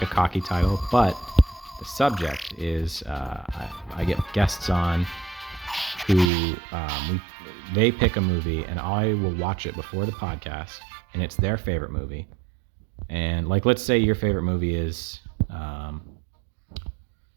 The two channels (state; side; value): drops out; left; at 6.3 s